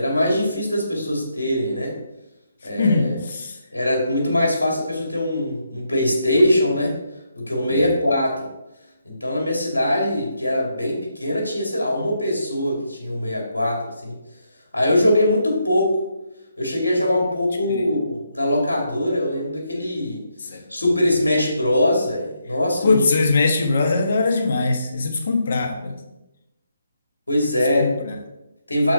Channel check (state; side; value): inverted; both; correlation -0.80